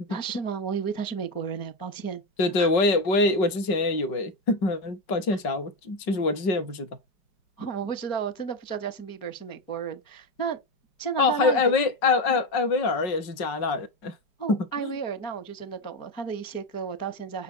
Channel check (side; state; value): right; late; 5.4 ms